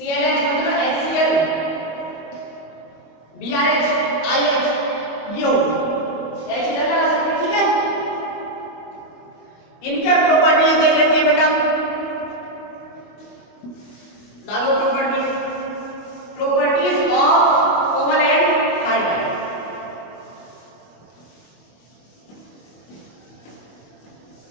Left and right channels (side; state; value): right; late; 25 ms